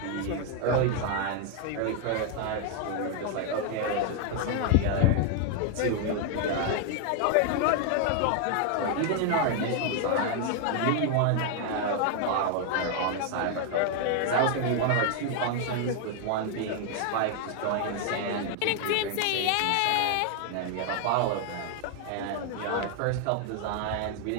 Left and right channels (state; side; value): different; both; correlation 0.00